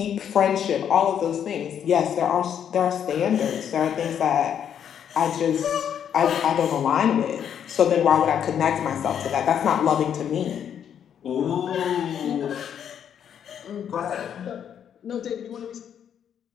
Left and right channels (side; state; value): right; quieter; 8.8 dB